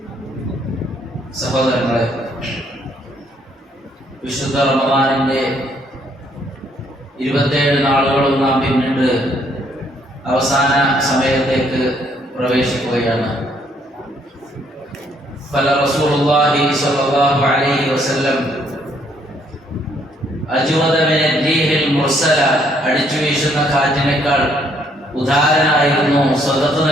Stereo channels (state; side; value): normal; both; correlation 0.68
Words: സഹോദരങ്ങളെ, വിശുദ്ധ റമദാനിന്റെ 27 നാളുകളും നാം പിന്നിട്ട് അവസാന സമയത്തേക്ക് പ്രവേശിക്കുകയാണ്. ഫല റസൂലുള്ളാഹി സ്വല്ലല്ലാഹു അലൈഹി വസല്ലം അജ്വദ മിന റീഹിൽ മുർസല, അടിച്ചു വീശുന്ന കാറ്റിനേക്കാൾ ഉദാരനായിരുന്നു, സ്വതത്ത്